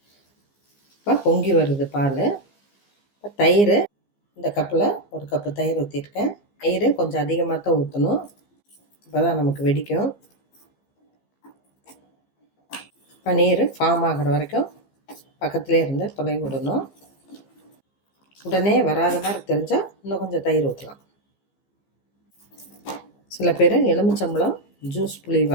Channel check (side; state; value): right; late; 15 ms